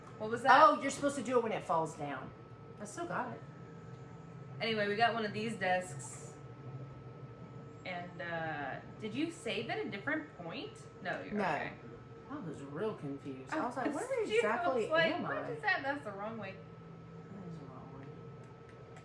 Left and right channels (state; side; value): identical; both; correlation 1.00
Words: What was that? Oh, you're supposed to do it when it falls down. I still got it. Anyway, we got one of these desks. And did you save at a different point? No, you're No. okay. I was real confused. I was like, confused. where exactly am I? What is that? That's the wrong way. That is the wrong way.